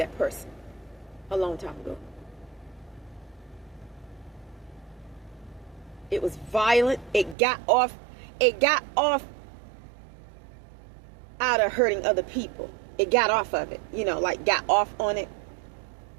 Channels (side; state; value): left; drops out; at 7.4 s